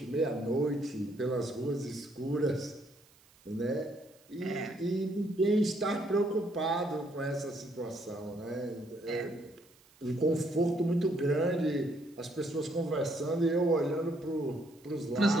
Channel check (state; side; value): noise; right; hiss, 29 dB below the sound